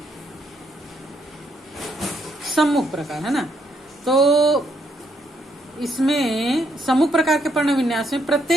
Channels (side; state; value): both; normal; correlation 0.74